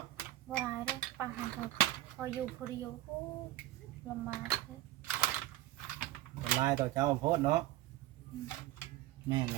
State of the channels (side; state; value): left; quieter; 15.3 dB